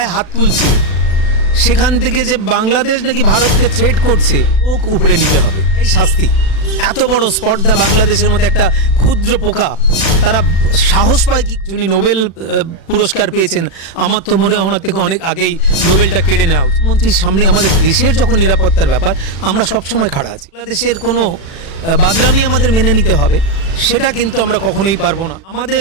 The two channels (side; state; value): right; late; 36 ms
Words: হাত তুলছে, সেখান থেকে যে বাংলাদেশ নাকি ভারতকে থ্রেট করছে, ওক উপরে নিতে হবে। এই শাস্তি, এত বড় স্পর্ধা বাংলাদেশের মধ্যে একটা ক্ষুদ্র পোকা, তারা সাহস পায় কি? যিনি নোবেল পুরস্কার পেয়েছেন, আমার তো মনে হয় ওনার থেকে অনেক আগেই নোবেলটা কেড়ে নেওয়া উচিত। মন্ত্রীর সামনে আমাদের দেশের যখন নিরাপত্তার ব্যাপার, আমরা সবসময় খাড়া আছি। বাংলাদেশের কোনো বাদরামি আমাদের মেনে নিতে হবে, সেটা কিন্তু আমরা কখনোই পারবো না। আমাদের